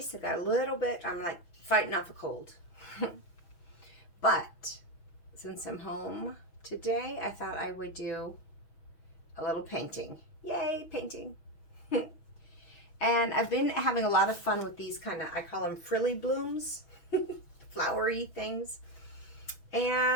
I'm like fighting off a cold. But since I'm home today, I thought I would do a little painting. Yay, painting. And I've been having a lot of fun with these I call them frilly blooms, flowery things.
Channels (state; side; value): late; right; 6.3 ms